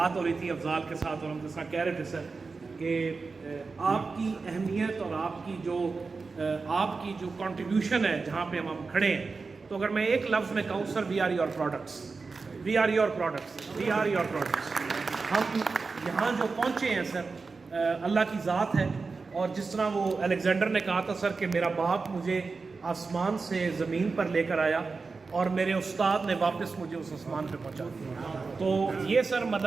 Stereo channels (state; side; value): quieter; left; 4.3 dB